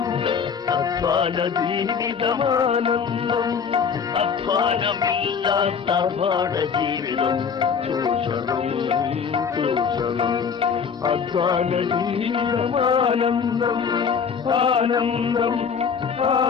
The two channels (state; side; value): quieter; right; 6.5 dB